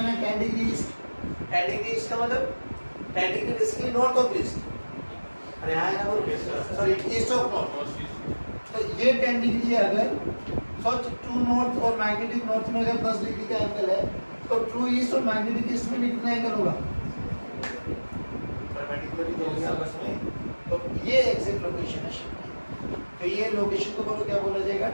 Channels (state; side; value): inverted; both; correlation -1.00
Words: है 10 डिग्री ईस्ट। 10 डिग्री ईस्ट का मतलब 10 degree basically north of east. अरे हाँ ना बोलो, सॉरी ईस्ट ऑफ नॉर्थ। तो ये 10 डिग्री है। अगर सोच, ट्रू नॉर्थ और मैग्नेटिक नॉर्थ में अगर 10 डिग्री का एंगल है तो ट्रू ईस्ट और मैग्नेटिक ईस्ट में कितना एंगल होगा? तो ये एग्जैक्ट लोकेशन है शिप की। तो ये लोकेशन को बोलो क्या बोला जाएगा,